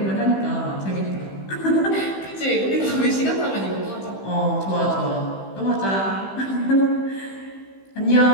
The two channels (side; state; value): right; late; 15 ms